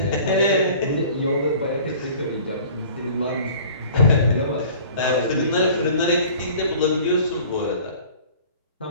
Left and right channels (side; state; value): both; inverted; correlation -0.47